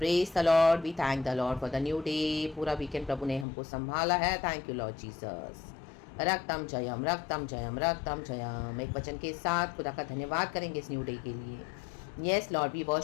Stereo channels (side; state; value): right; drops out; at 3.5 s